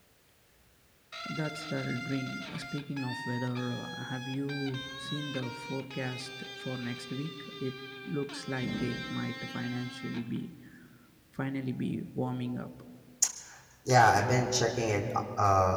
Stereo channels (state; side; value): identical; both; correlation 1.00